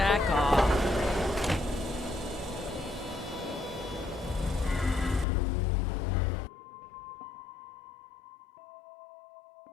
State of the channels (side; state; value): right; drops out; at 5.2 s